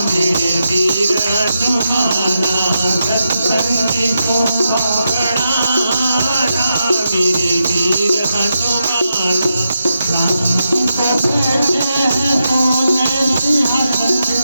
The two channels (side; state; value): both; inverted; correlation -0.86